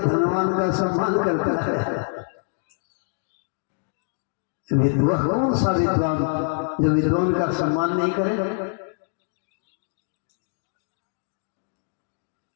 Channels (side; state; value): right; silent; digital silence